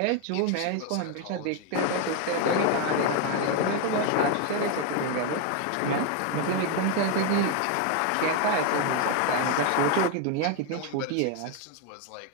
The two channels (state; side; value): different; both; correlation 0.01